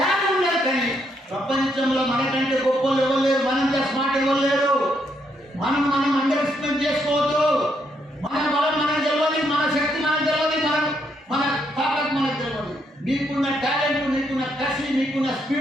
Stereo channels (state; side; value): normal; both; correlation 0.75